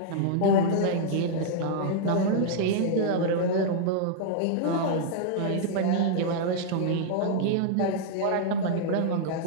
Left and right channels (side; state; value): both; different; correlation -0.01